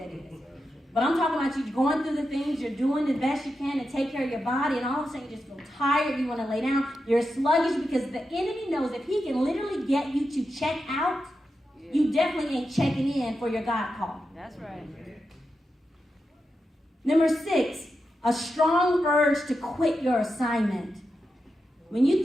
is. But I'm talking about you going through the things, you're doing the best you can to take care of your body, and all of a sudden you just feel tired, you want to lay down. You're sluggish because the enemy knows if he can literally get you to check out, you definitely ain't checking in for your God call. That's right. Number 6, a strong urge to quit your assignment. When you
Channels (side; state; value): both; normal; correlation 0.88